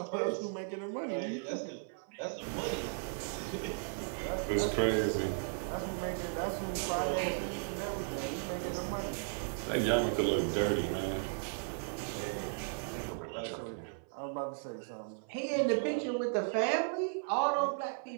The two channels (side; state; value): left; silent; 54 dB below the other